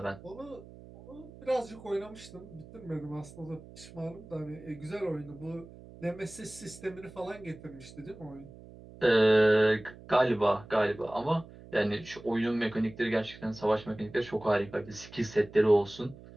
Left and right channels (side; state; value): right; noise; hum, 18 dB below the sound